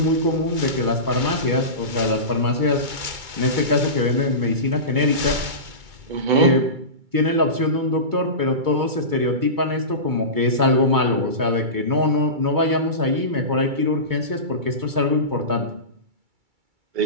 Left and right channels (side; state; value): left; late; 2.3 ms